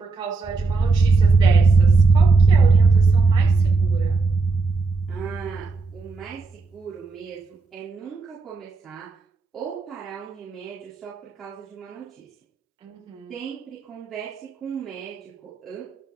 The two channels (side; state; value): left; quieter; 4.0 dB